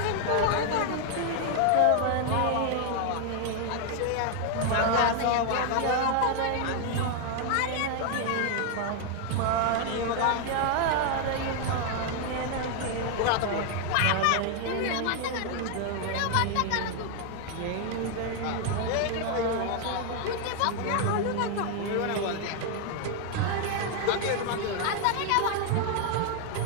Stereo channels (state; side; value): different; both; correlation 0.00